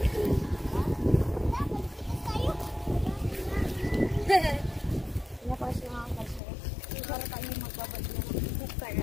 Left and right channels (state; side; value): drops out; right; at 6.4 s